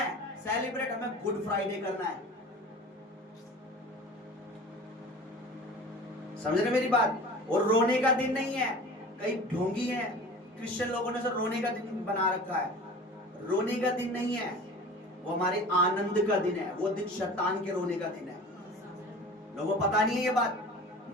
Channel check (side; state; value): both; normal; correlation 0.39